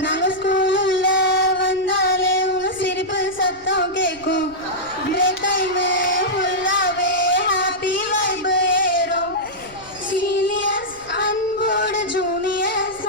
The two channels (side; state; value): left; noise; rumble, 25 dB below the sound